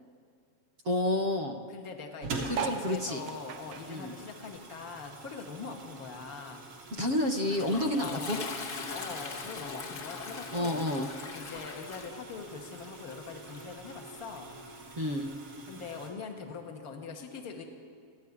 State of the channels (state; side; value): late; left; 7.1 ms